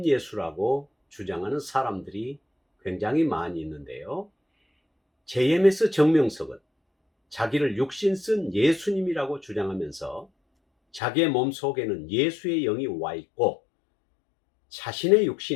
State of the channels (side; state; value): right; drops out; at 11.0 s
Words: 주장하는 사람들이 굉장히 많이 있는데요. JMS 정명석은 자기를 육신 쓴 예수님이라고 주장하면서 자기의 몸속에는 예수의 영이 와 있고 자신의